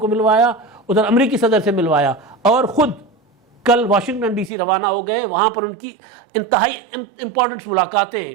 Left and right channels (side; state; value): left; drops out; at 4.5 s